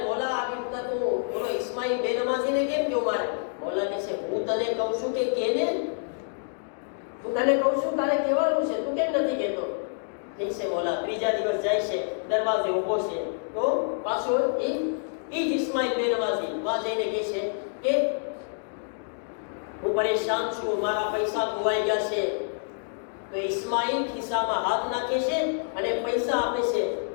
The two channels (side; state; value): right; silent; digital silence